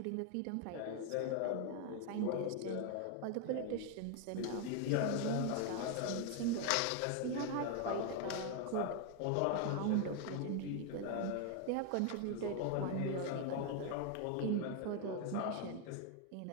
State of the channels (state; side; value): different; both; correlation 0.01